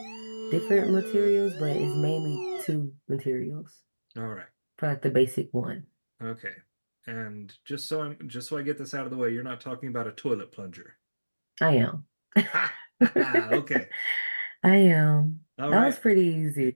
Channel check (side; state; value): both; inverted; correlation -1.00